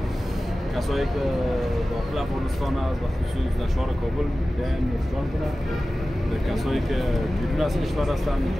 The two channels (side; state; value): both; normal; correlation 0.96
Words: کسایی که داخل افغانستان است و خصوص در شهر کابل بیاین نوشجان کنند. کسایی که بیرون از کشور هستند